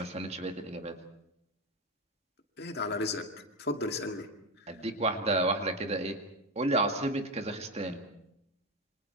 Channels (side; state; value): both; normal; correlation 0.13